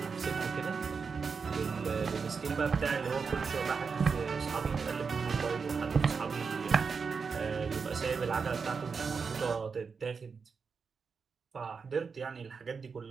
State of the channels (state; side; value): quieter; left; 5.4 dB